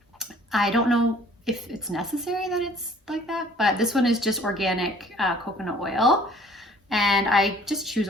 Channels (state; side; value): normal; both; correlation 0.55